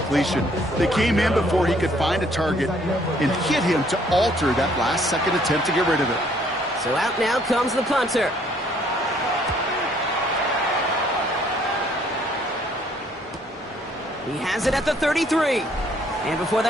They came in before he could find a target and hit him to alter that last-second attempt to get rid of it. So out now comes the punter. He has it at the 33. And before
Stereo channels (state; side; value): normal; both; correlation 0.64